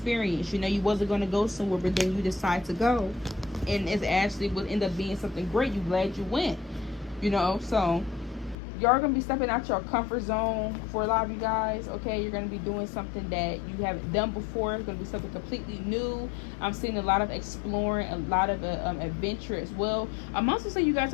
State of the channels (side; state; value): right; drops out; at 8.6 s